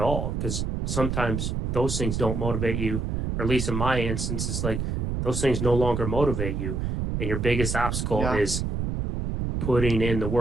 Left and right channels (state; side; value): noise; right; rumble, 2 dB below the sound